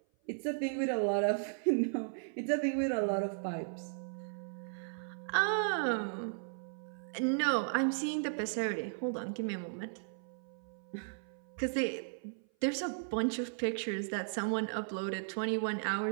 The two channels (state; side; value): silent; left; 54 dB below the other